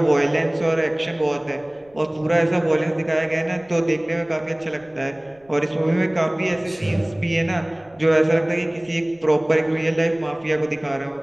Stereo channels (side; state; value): left; noise; rumble, 30 dB below the sound